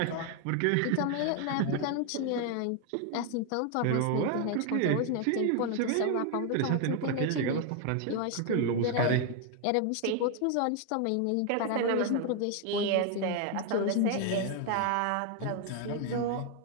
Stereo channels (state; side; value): different; both; correlation 0.01